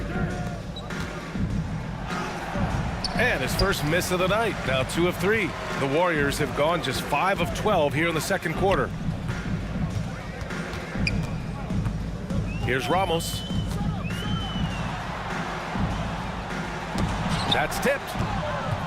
And his first miss of the night, now 2 of 3. The Warriors have gone just 5 of 12 here in the second quarter. Here's Ramos. That's tipped.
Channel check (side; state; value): both; identical; correlation 1.00